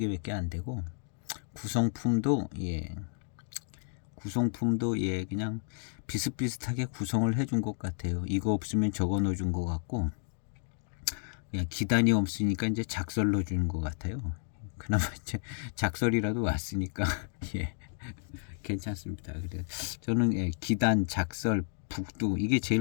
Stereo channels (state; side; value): silent; right; digital silence